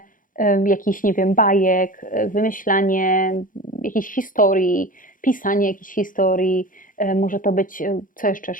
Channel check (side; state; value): right; late; 0.39 ms